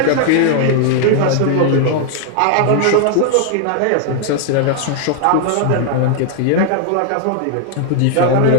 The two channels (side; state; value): both; different; correlation 0.00